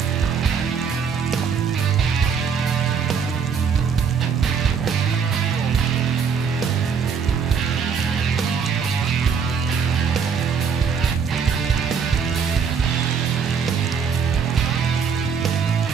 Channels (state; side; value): quieter; left; 6.3 dB